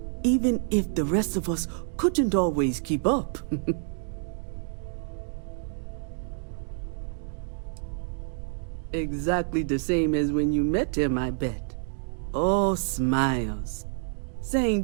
Even if the rest of us couldn't always keep up. Exactly the same as when you met him, I bet. Oh, smiles.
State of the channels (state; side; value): silent; left; digital silence